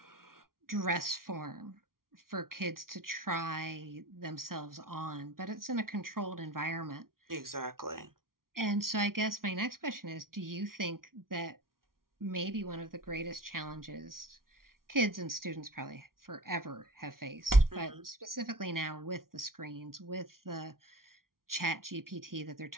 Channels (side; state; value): left; late; 0.92 ms